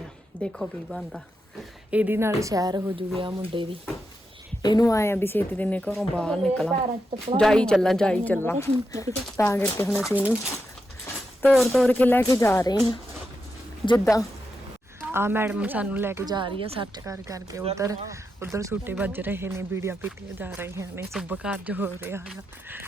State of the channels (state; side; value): normal; both; correlation 0.86